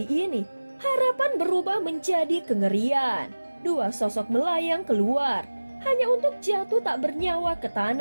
ini harapan berubah menjadi kengerian. Dua sosok melayang keluar, hanya untuk jatuh tak bernyawa ke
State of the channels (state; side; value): inverted; both; correlation -1.00